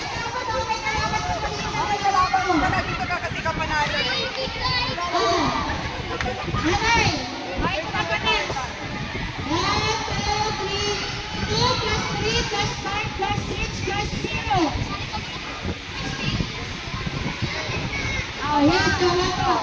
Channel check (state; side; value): identical; both; correlation 1.00